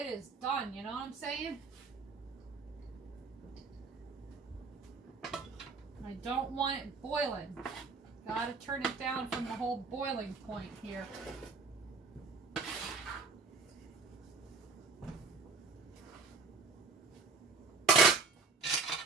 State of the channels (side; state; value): left; quieter; 4.6 dB